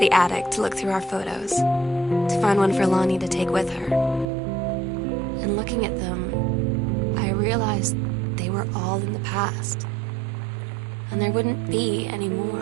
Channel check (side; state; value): left; drops out; at 4.3 s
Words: the attic to look through our photos, to find one for Lonnie to take with her. And looking at them, I realized they were all in the past, and there wouldn't be any more.